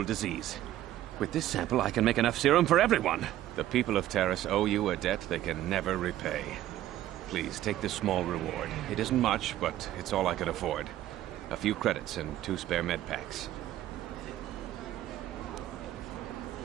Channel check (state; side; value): quieter; left; 13.5 dB